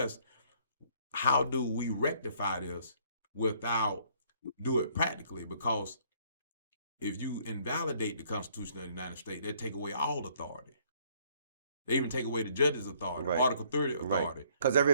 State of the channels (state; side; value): inverted; both; correlation -0.63